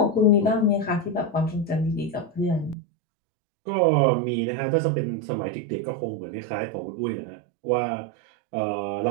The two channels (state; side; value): drops out; left; at 2.8 s